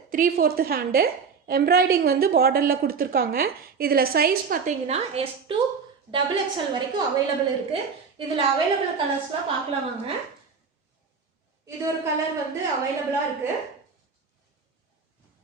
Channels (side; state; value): left; quieter; 5.6 dB